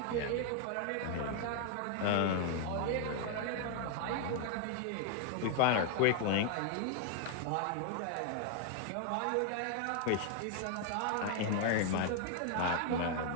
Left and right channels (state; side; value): different; both; correlation 0.00